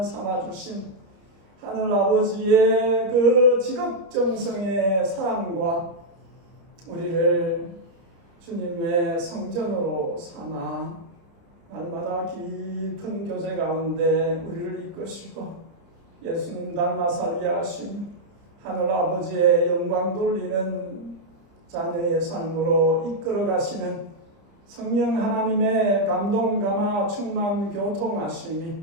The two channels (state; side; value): late; left; 30 ms